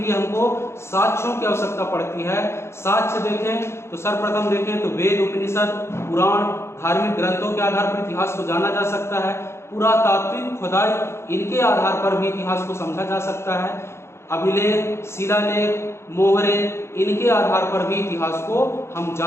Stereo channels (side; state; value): right; late; 0.13 ms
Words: हमको साक्ष्यों की आवश्यकता पड़ती है। साक्ष्य देखें तो सर्वप्रथम देखें तो वेद, उपनिषद, पुराण, धार्मिक ग्रंथों के आधार पर इतिहास को जाना जा सकता है। पुरातात्विक खुदाई, इनके आधार पर भी इतिहास को समझा जा सकता है। अभिलेख, शिलालेख, मोहरे, इनके आधार पर भी इतिहास को हम